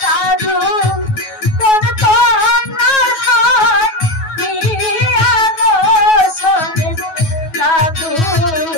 দাদু কোন কন্যার হাত দিয়া গো শোনে দাদু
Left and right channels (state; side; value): late; right; 9.3 ms